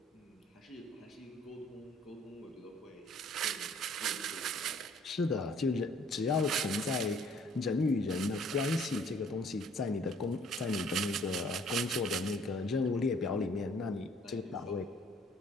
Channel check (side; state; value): both; normal; correlation 0.58